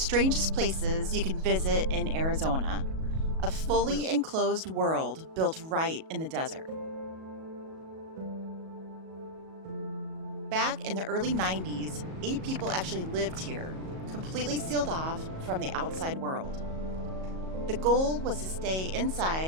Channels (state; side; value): late; left; 37 ms